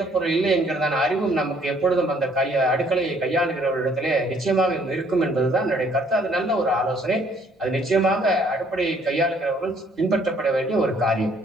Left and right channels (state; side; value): normal; both; correlation 0.63